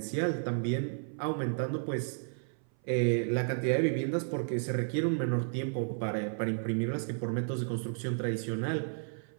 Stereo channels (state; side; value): silent; left; 55 dB below the other